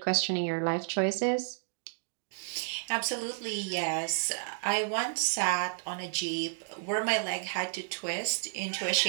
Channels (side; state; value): left; silent; digital silence